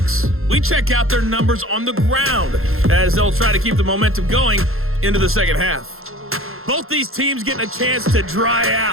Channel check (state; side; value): late; left; 0.61 ms